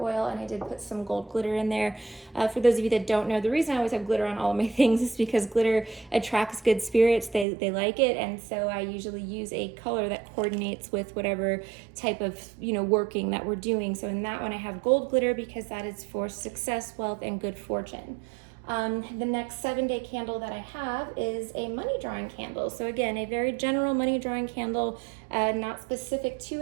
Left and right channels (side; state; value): left; drops out; at 7.5 s